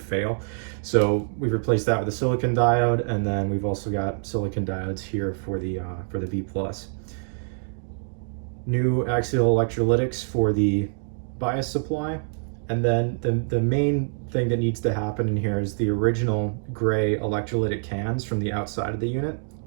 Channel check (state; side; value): silent; left; digital silence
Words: So we've replaced that with a silicon diode, and then we've also got silicon diodes here for the B+. New axial electrolytics for the bias supply, and then the main thing that needs to happen in here is the original gray electrolytic cans from the outside of the unit